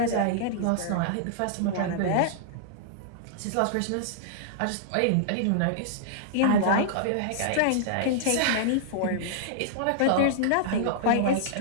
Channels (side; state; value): both; different; correlation -0.02